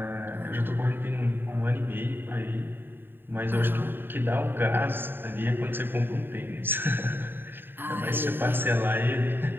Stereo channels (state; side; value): late; left; 0.098 ms